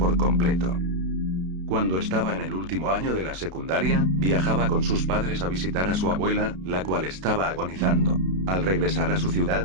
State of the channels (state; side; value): late; left; 32 ms